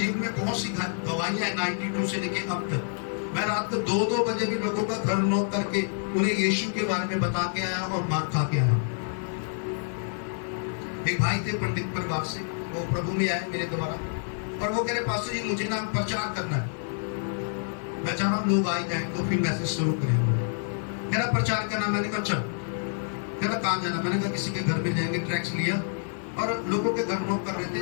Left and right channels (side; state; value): right; silent; 60 dB below the other